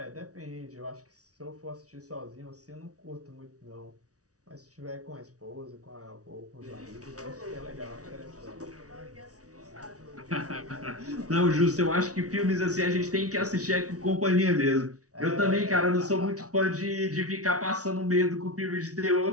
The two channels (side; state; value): left; late; 0.67 ms